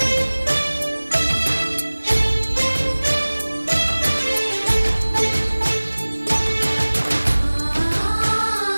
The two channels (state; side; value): inverted; both; correlation -1.00